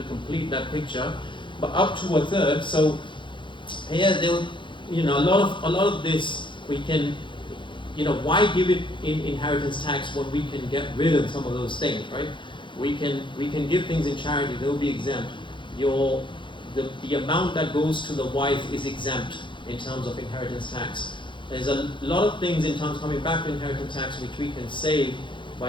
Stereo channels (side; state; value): right; late; 0.23 ms